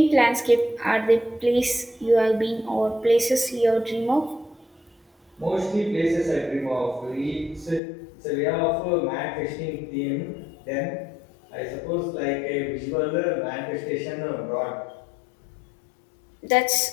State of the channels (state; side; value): drops out; right; at 7.8 s